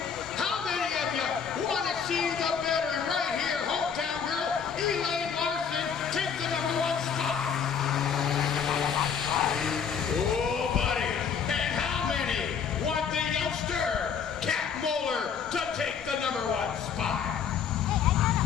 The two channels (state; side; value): quieter; right; 7.0 dB